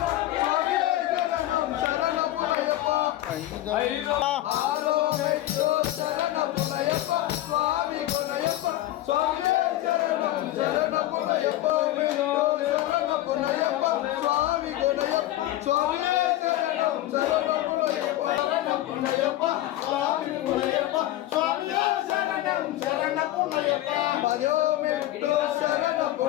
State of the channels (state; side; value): quieter; right; 14.9 dB